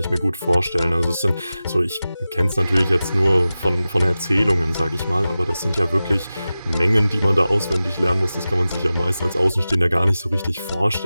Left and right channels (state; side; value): inverted; both; correlation -0.95